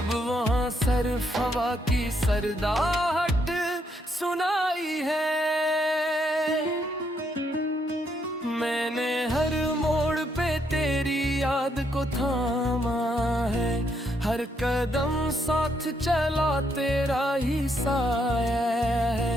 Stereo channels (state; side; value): normal; both; correlation 0.75